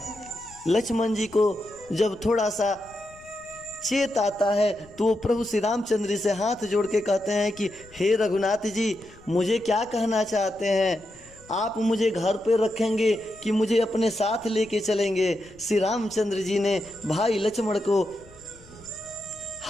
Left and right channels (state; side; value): noise; left; rumble, 25 dB below the sound